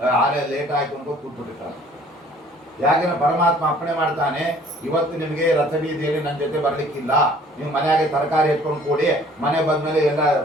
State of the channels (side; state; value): both; normal; correlation 0.55